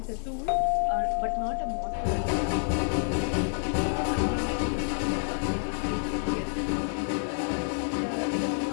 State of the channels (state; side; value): silent; right; digital silence